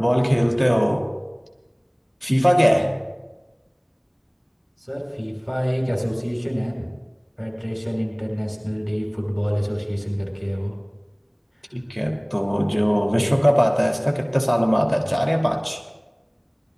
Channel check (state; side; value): identical; both; correlation 1.00